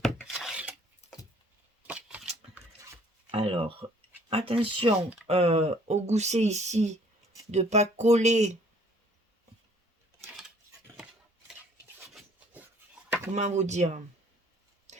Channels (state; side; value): normal; both; correlation 0.58